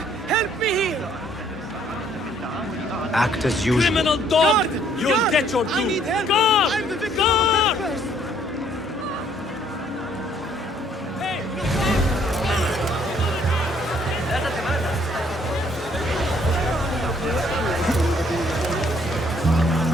Help me here! Act as usual. Criminal dog! You'll get your due! I need help! Guard! I'm the victim of first! Hey!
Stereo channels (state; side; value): normal; both; correlation 0.64